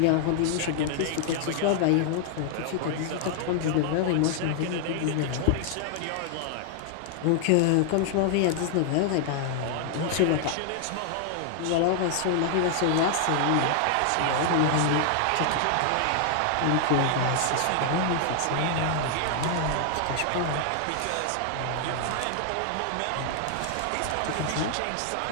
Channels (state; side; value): different; both; correlation 0.00